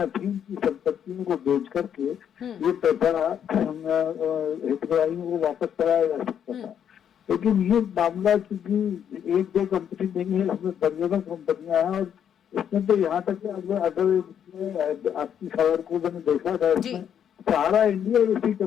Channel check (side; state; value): right; quieter; 8.9 dB